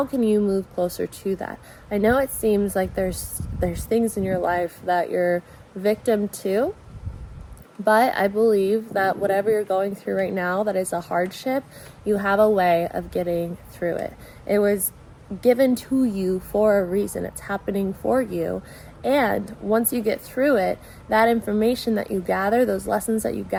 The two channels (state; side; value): identical; both; correlation 1.00